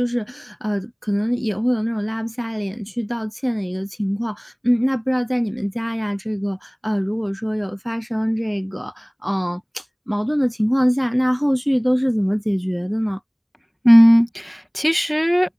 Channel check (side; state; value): both; identical; correlation 1.00